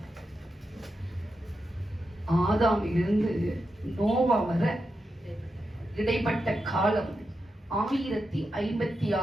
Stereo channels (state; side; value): normal; both; correlation 0.88